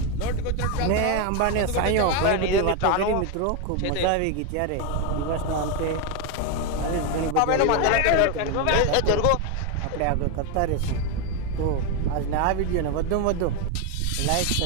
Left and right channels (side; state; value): both; different; correlation 0.02